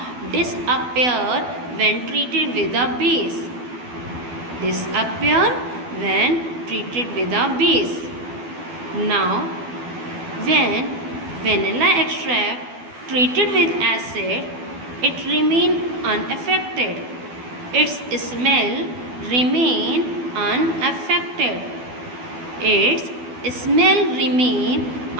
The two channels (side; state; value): left; late; 12 ms